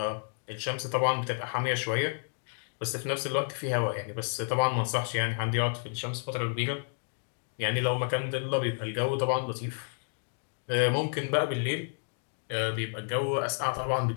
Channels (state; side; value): silent; right; digital silence